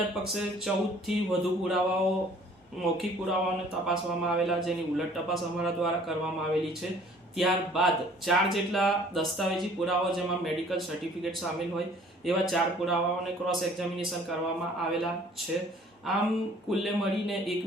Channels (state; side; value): normal; both; correlation 0.54